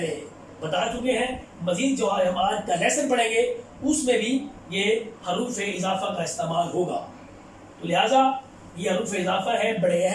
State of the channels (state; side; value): identical; both; correlation 1.00